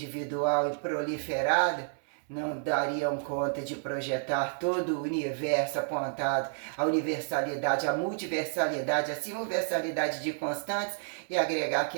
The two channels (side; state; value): left; silent; 58 dB below the other